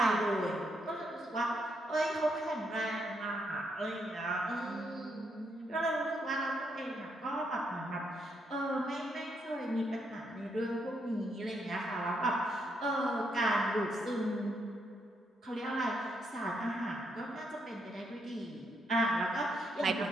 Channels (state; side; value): normal; both; correlation 0.77